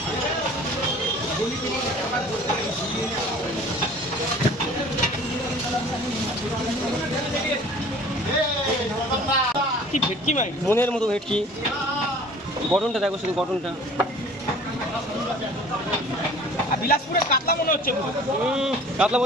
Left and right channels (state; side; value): normal; both; correlation 0.48